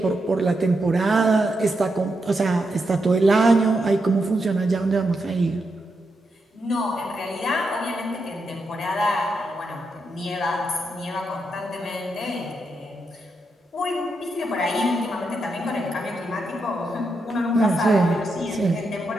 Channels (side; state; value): both; normal; correlation 0.84